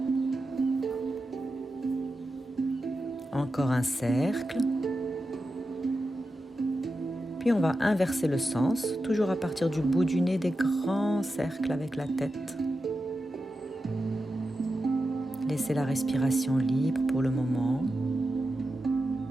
Encore un cercle. Puis on va inverser le sens, toujours à partir du bout du nez, des grands cercles avec la tête. Laissez la respiration libre pour le moment.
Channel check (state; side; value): normal; both; correlation 0.90